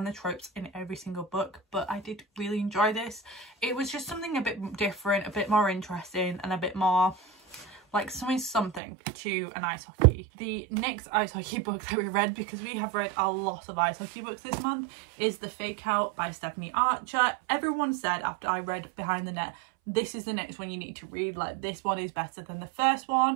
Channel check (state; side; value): drops out; left; at 8.8 s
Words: the tropes in every single book. But I did really enjoy this. It was just something a bit different, a bit more interesting, and a bit more like something to an ice hockey. The next ice hockey book that we read, because we have read a lot of ice hockey books this month, is The Fake Out by Stephanie Archer. Everyone said after I read Behind the Net, this is the next one you need to read. Like, this one is better than the first